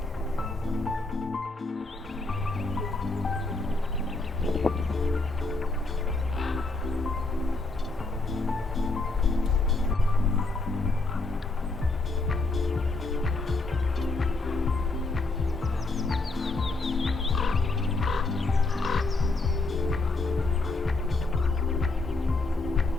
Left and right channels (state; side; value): quieter; right; 3.3 dB